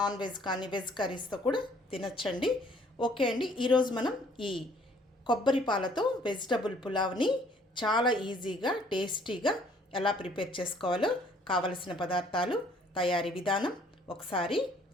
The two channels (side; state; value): both; normal; correlation 0.60